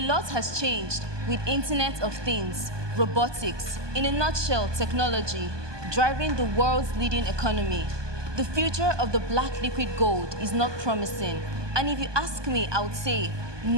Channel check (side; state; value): left; late; 1.2 ms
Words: lot has changed with Internet of Things, robotics, in a nutshell, technology, driving the world's leading economy. The future of the black liquid gold is not promising. And if you ask me, I would say,